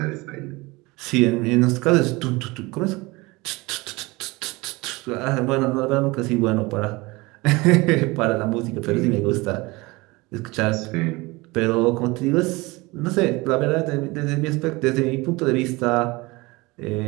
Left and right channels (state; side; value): quieter; left; 23.2 dB